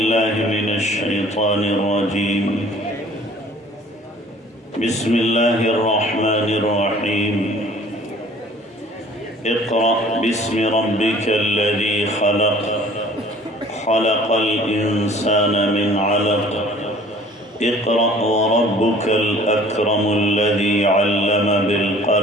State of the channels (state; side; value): normal; both; correlation 0.51